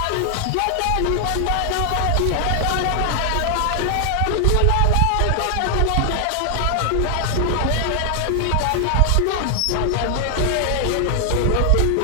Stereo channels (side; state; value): both; different; correlation 0.00